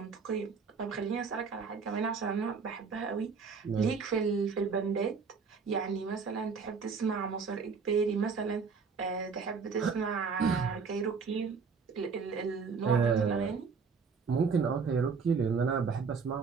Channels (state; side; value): quieter; left; 5.4 dB